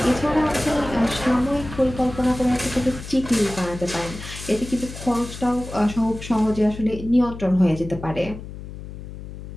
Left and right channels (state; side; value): noise; left; hum, 12 dB below the sound